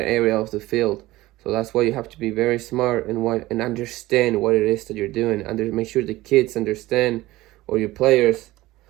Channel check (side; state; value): left; quieter; 18.0 dB